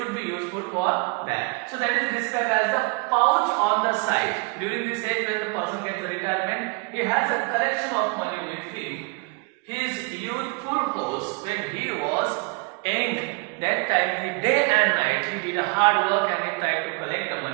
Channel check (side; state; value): left; quieter; 29.7 dB